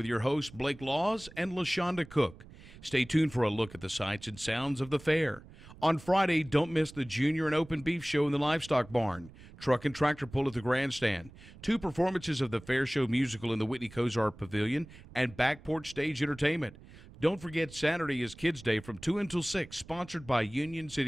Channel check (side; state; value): right; noise; rumble, 20 dB below the sound